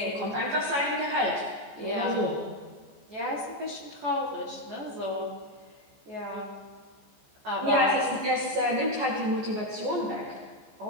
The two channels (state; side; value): late; left; 14 ms